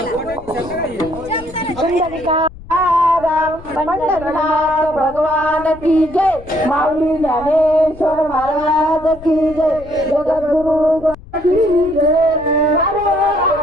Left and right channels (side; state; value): left; noise; rumble, 18 dB below the sound